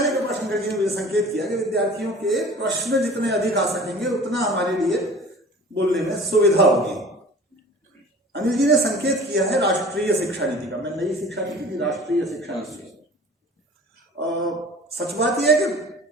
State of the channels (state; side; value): normal; both; correlation 0.44